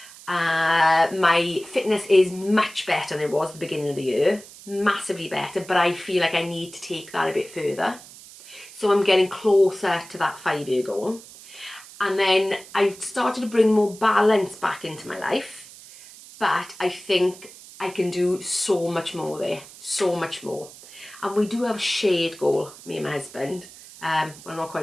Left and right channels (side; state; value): right; noise; hiss, 19 dB below the sound